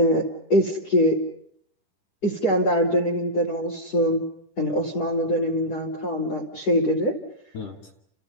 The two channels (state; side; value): late; right; 10 ms